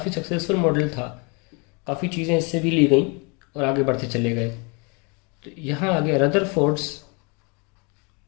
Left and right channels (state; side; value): quieter; right; 32.0 dB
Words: सक्सेसफुल मॉडल था। काफ़ी चीज़ें इससे भी ली गई और आगे बढ़ते चले गए। तो यहाँ आगे Rutherford's